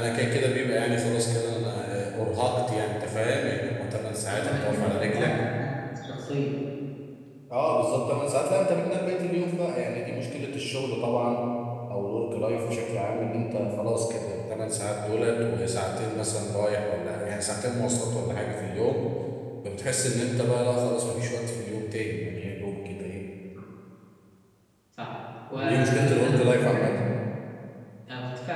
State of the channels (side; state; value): both; identical; correlation 1.00